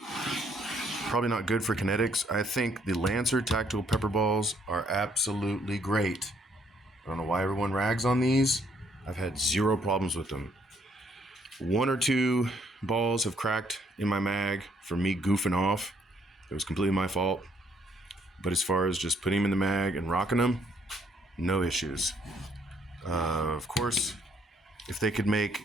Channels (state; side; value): normal; both; correlation 0.68